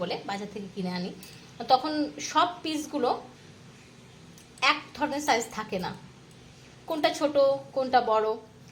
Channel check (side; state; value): both; identical; correlation 1.00